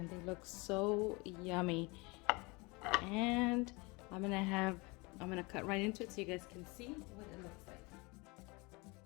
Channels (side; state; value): right; quieter; 26.6 dB